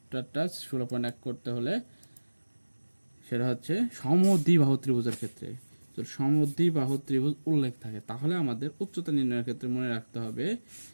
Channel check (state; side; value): inverted; both; correlation -1.00